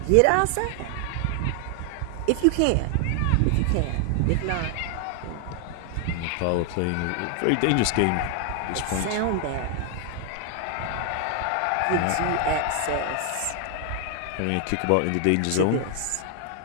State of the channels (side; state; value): both; different; correlation 0.00